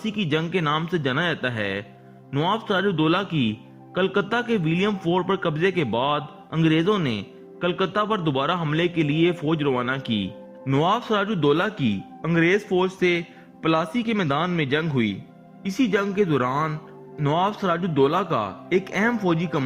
کی جنگ کے نام سے جانا جاتا ہے۔ نواب سراج الدولہ کی کلکتہ کے ولیم فورٹ پر قبضے کے بعد انگریزوں نے کلکتہ پر دوبارہ حملے کے لیے فوج روانہ کی۔ نواب سراج الدولہ کی انگریز فوج سے پلاسی کے میدان میں جنگ ہوئی۔ اسی جنگ کے دوران نواب سراج الدولہ کا ایک اہم فوجی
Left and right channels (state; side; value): identical; both; correlation 1.00